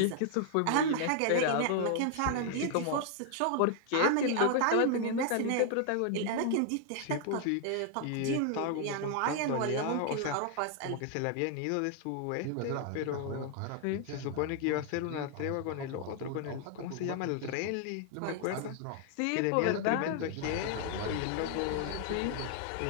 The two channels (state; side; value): different; both; correlation 0.00